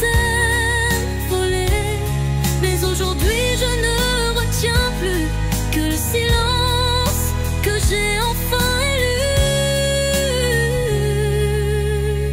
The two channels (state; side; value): identical; both; correlation 1.00